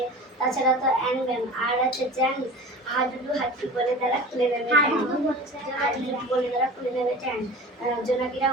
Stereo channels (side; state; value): both; normal; correlation 0.37